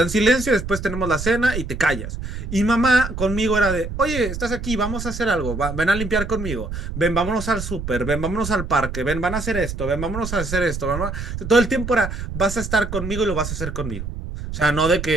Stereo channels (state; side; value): noise; right; rumble, 6 dB below the sound